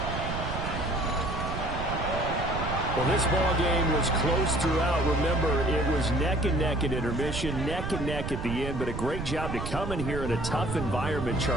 Well, this ball game was close throughout. Remember, it was neck and neck at intermission, neck and neck at the end, but a great job to come in here in a tough environment,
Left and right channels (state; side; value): noise; right; rumble, 5 dB below the sound